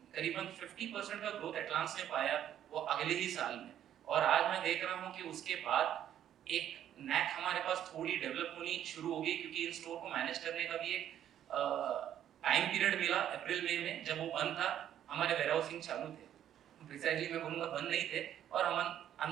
करीबन 50% का ग्रोथ एटलांस ने पाया वो अगले ही साल में। और आज मैं देख रहा हूँ कि उसके बाद एक नैक हमारे पास थोड़ी डेवलप होनी शुरू हो गई, क्योंकि इन स्टोर को मैनेज करने का भी एक टाइम पीरियड मिला। अप्रैल मई में जब वो बंद था, हमारे वेयरहाउसिंग चालू थे, प्रिसाइजली मैं बोलूँगा बंद नहीं थे, और हम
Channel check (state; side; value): quieter; left; 10.7 dB